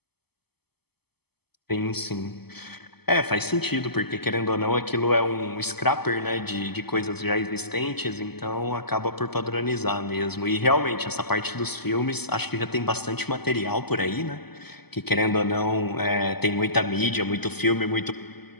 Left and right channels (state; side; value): late; right; 0.97 ms